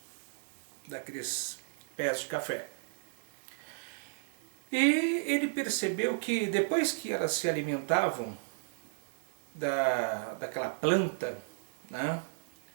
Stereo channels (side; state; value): left; silent; digital silence